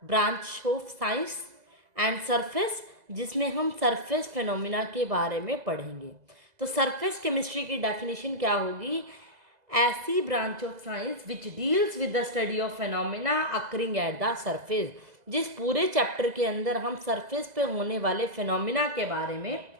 branch of science and surface जिसमें हम surface phenomena के बारे में पढ़ेंगे. तो surface chemistry की definition क्या होगी? ऐसी branch of science which deals with the study of phenomena occurring at the surface. जिस पूरे चैप्टर के अंदर हम सरफेस पे होने वाले फिनोमिना के बारे में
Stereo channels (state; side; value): late; left; 2.0 ms